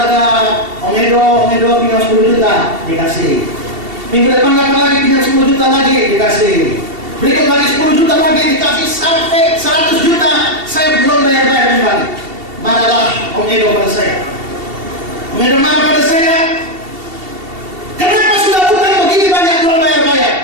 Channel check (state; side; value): late; left; 2.7 ms